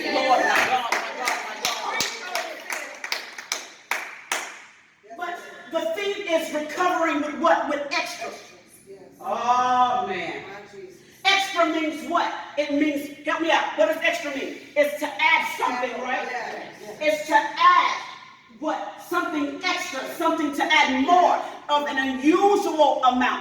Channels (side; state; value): both; identical; correlation 1.00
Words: my God, my God. But the thing is recovering with what? With extra. Oh, man. Extra means what? It means, help me out. What does extra mean? It's to add something, right? It's to add what? Something extra, something to add more of an unusual